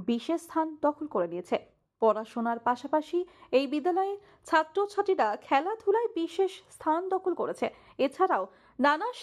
বিশেষ স্থান দখল করে নিয়েছে। পড়াশোনার পাশাপাশি এই বিদ্যালয়ে ছাত্রছাত্রীরা খেলাধুলায় বিশেষ স্থান দখল করেছে। এছাড়াও নানা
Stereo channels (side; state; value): both; identical; correlation 1.00